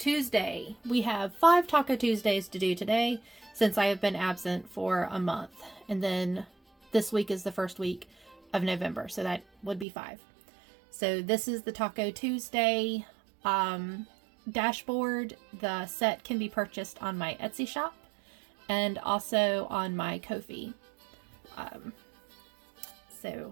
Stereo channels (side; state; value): left; drops out; at 9.9 s